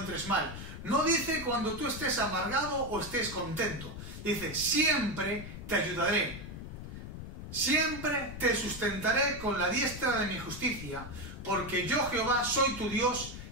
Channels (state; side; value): noise; left; rumble, 10 dB below the sound